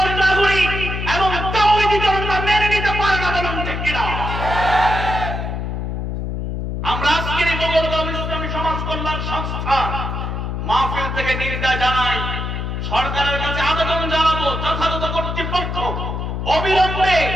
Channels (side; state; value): left; noise; hum, 3 dB below the sound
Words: নাগরিক এবং তাওহীদি জনতা মেনে নিতে পারে না, বলুন ঠিক কিনা? আমরা আজকের এই মোগলগাঁও ইসলামী সমাজ কল্যাণ সংস্থা মাহফিল থেকে নিন্দা জানাই, সরকারের কাছে আবেদন জানাবো যথাযথ কর্তৃপক্ষ অবিলম্বে